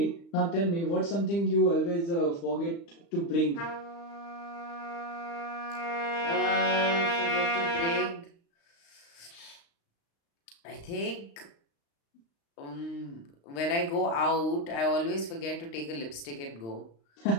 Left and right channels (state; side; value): late; right; 35 ms